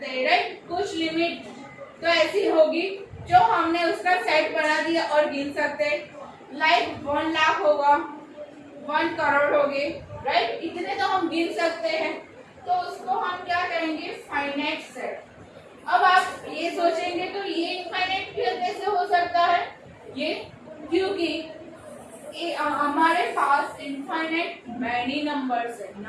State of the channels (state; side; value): identical; both; correlation 1.00